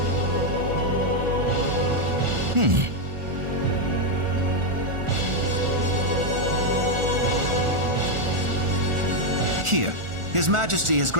Here, His Majesty has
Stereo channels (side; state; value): left; late; 1.4 ms